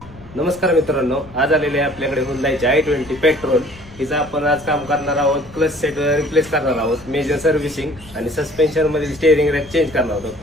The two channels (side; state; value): left; noise; rumble, 20 dB below the sound